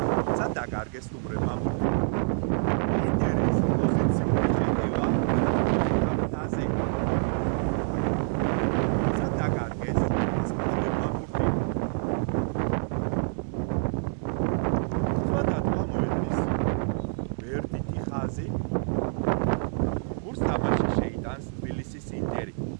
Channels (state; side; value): silent; left; digital silence